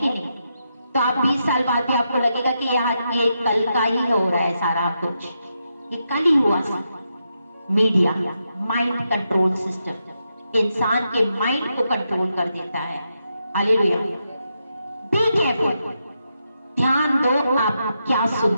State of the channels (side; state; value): both; inverted; correlation -0.84